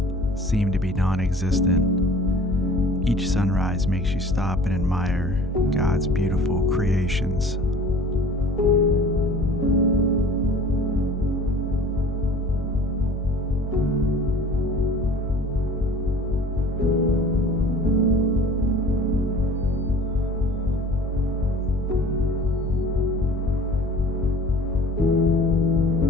seem to be non-existent. Each sunrise makes you stop and admire God's beautiful creations.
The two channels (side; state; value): both; normal; correlation 0.46